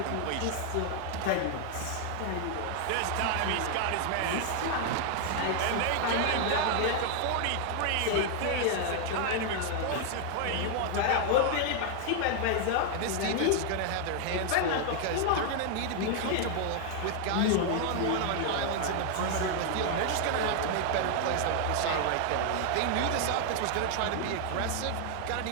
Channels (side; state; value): both; different; correlation 0.00